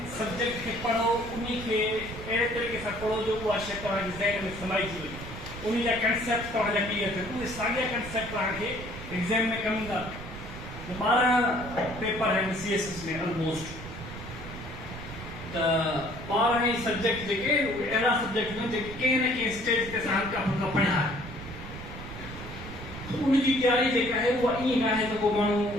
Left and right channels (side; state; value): right; noise; rumble, 12 dB below the sound